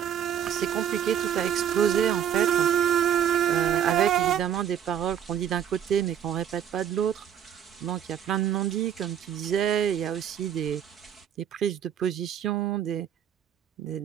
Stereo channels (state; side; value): quieter; left; 9.4 dB